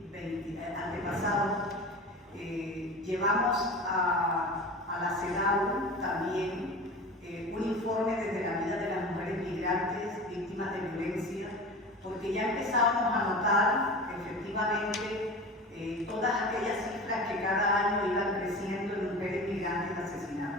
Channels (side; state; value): both; normal; correlation 0.33